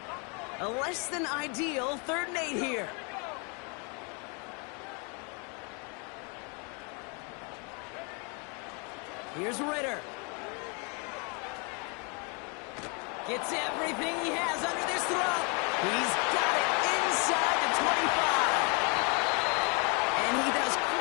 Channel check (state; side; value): quieter; right; 34.2 dB